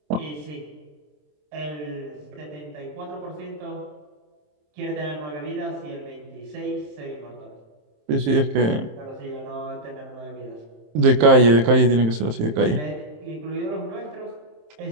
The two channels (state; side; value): late; left; 27 ms